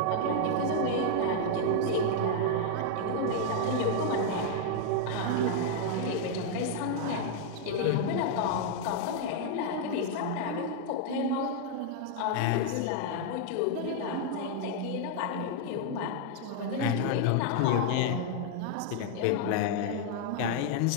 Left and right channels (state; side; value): different; both; correlation 0.00